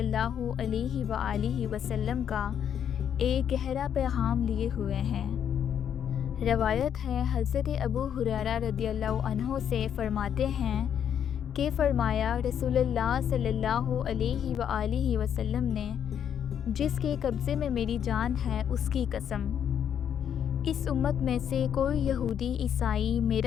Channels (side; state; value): right; quieter; 8.8 dB